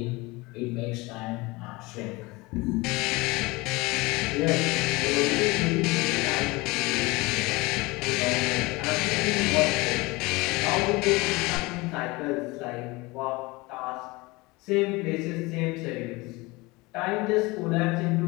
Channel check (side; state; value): right; quieter; 23.4 dB